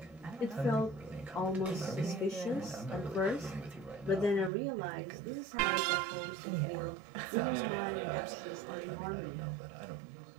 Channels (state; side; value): drops out; left; at 4.5 s